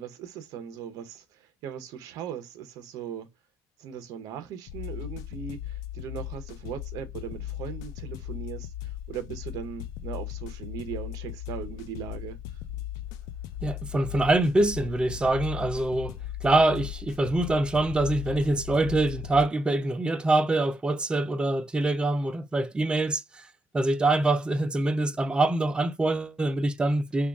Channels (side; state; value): both; normal; correlation 0.80